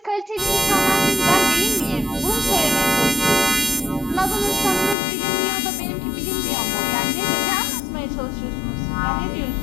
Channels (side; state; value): right; drops out; at 5.0 s